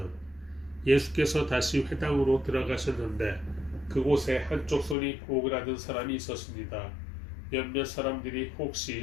예수께서 다시 회당으로 들어가셨는데 그곳에 한쪽 손이 오그라든 사람이 있었습니다. 몇몇 사람들이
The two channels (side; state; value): right; drops out; at 5.0 s